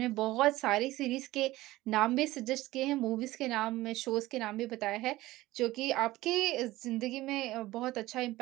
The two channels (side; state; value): left; quieter; 17.6 dB